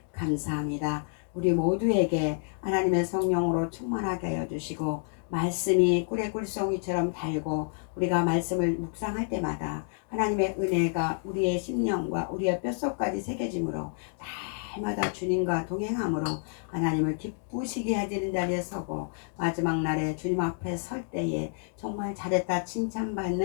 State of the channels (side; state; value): right; silent; 56 dB below the other